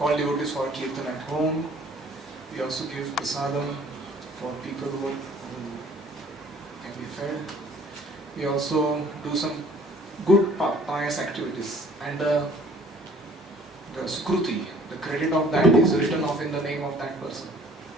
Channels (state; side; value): normal; both; correlation 0.55